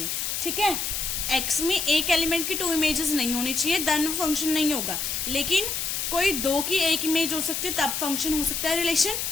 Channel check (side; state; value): left; noise; hiss, 2 dB below the sound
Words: ठीक है। x में एक एलिमेंट की 2 इमेजेस नहीं होनी चाहिए, देन फंक्शन नहीं होगा। लेकिन कोई 2 की 1 इमेज हो सकती है, तब फंक्शन हो सकता है रिलेशन।